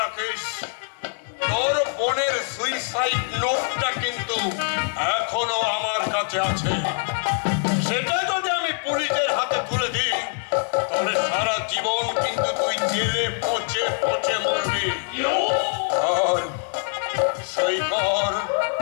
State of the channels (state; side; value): silent; right; 59 dB below the other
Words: রাখিস, তোর বোনের সুইসাইড নোটটা কিন্তু এখনো আমার কাছে আছে। সেটা যদি আমি পুলিশের হাতে তুলে দিই তাহলে সারা জীবন কিন্তু তুই জেলে পচে পচে মরবি। আর সই কর,